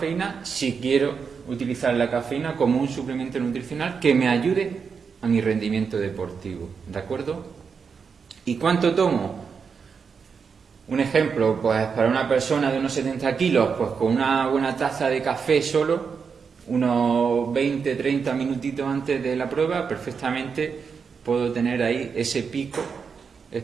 si quiero utilizar la cafeína como un suplemento nutricional que me ayude a mi rendimiento deportivo, ¿de acuerdo? ¿Y cuánto tomo? Un ejemplo, pues para una persona de unos 70 kilos, pues con una buena taza de café solo, unos 20-30 minutitos antes de la prueba, perfectamente puedo tener ahí ese pico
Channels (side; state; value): left; quieter; 5.9 dB